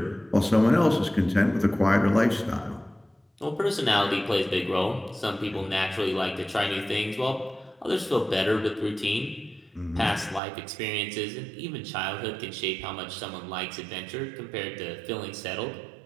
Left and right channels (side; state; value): left; drops out; at 10.4 s